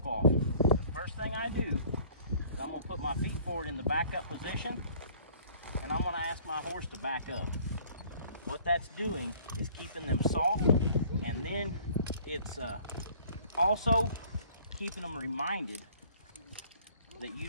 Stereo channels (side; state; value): both; inverted; correlation -0.54